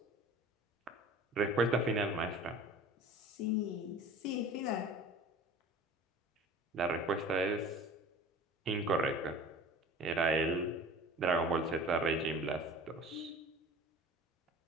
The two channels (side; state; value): both; normal; correlation 0.42